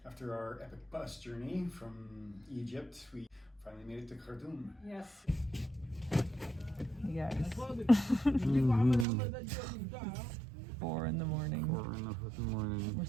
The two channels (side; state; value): left; drops out; at 9.1 s